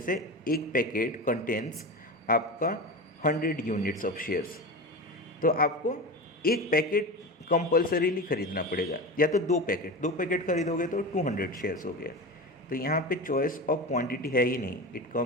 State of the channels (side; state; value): both; normal; correlation 0.25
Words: एक पैकेट कंटेन्स आपका 100 यूनिट्स ऑफ शेयर्स, तो आपको एक पैकेट कंपल्सरीली खरीदना पड़ेगा, या तो दो पैकेट खरीदोगे तो 200 शेयर्स हो गया। तो यहाँ पे चॉइस ऑफ क्वांटिटी है ही नहीं, it